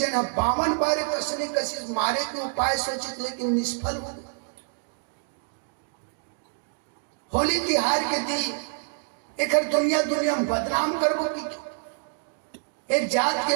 52 बार कसने कसी मारे के उपाय सोचित लेकिन निष्फल हो गए। होली तिहार के दिन एक दुनिया में बदनाम करबो की, एक जात के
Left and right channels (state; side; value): silent; left; digital silence